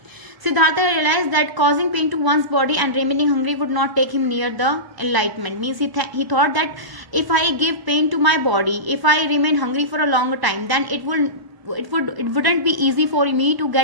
Siddhartha realized that causing pain to one's body and remaining hungry would not take him near the enlightenment. Means he thought that if I give pain to my body, if I remain hungry for a longer time, then it wouldn't be easy for me to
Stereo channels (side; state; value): left; late; 1.0 ms